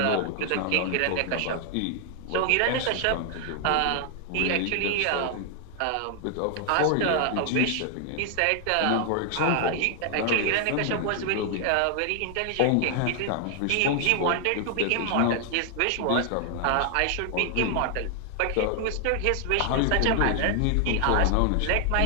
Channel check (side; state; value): both; different; correlation 0.00